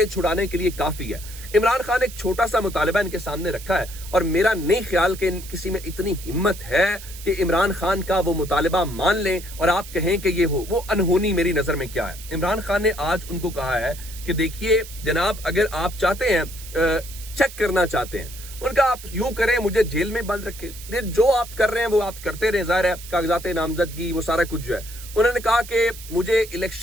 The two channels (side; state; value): right; noise; hiss, 15 dB below the sound